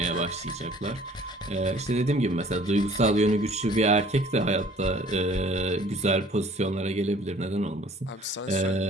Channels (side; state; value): both; normal; correlation 0.53